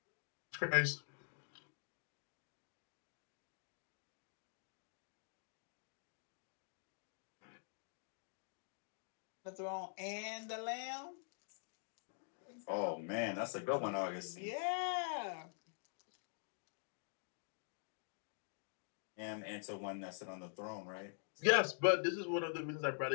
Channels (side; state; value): right; silent; digital silence